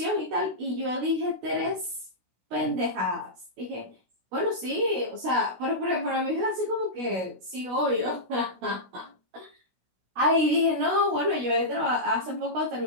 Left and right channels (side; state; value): left; late; 16 ms